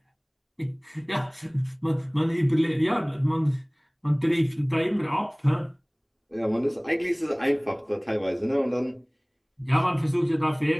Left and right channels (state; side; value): identical; both; correlation 1.00